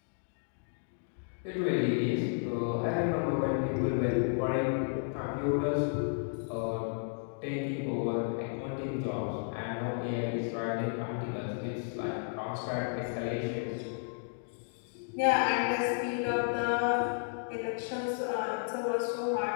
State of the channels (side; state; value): right; silent; digital silence